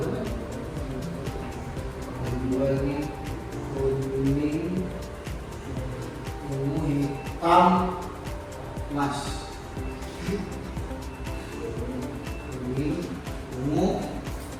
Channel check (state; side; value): identical; both; correlation 1.00